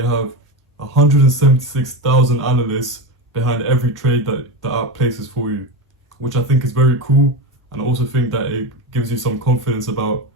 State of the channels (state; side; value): normal; both; correlation 0.19